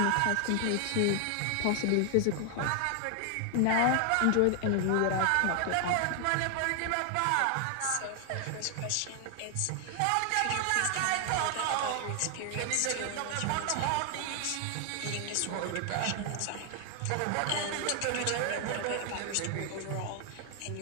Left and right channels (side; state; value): both; different; correlation 0.00